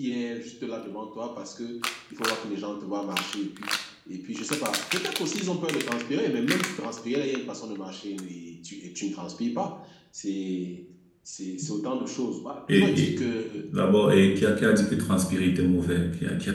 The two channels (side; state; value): both; identical; correlation 1.00